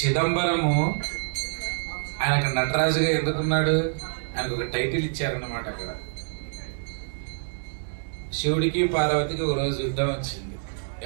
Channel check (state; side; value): silent; left; digital silence